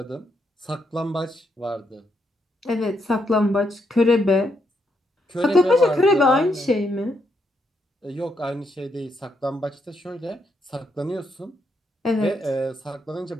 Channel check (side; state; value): both; normal; correlation 0.78